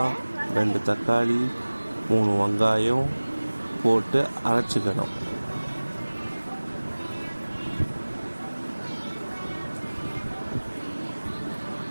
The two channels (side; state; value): both; inverted; correlation -1.00